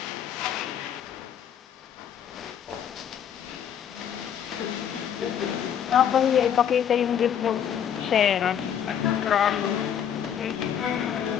ako ipakita yung report sir.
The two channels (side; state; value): right; quieter; 9.0 dB